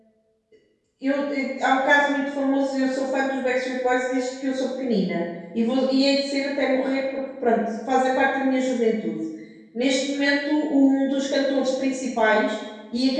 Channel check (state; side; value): identical; both; correlation 1.00